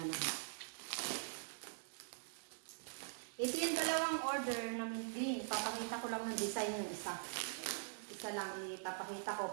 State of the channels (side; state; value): left; silent; digital silence